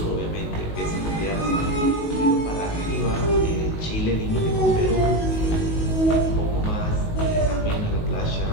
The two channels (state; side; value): late; right; 19 ms